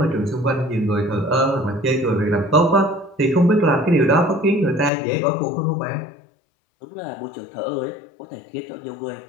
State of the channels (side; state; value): right; drops out; at 4.9 s